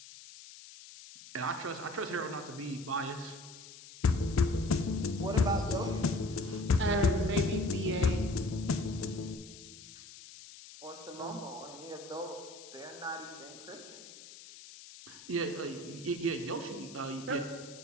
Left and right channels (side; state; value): left; noise; hiss, 16 dB below the sound